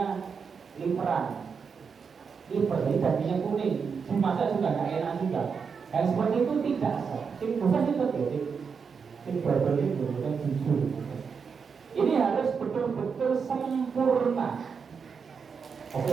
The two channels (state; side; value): quieter; left; 5.9 dB